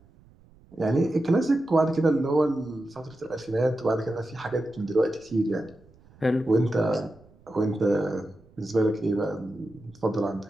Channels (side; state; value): right; noise; rumble, 27 dB below the sound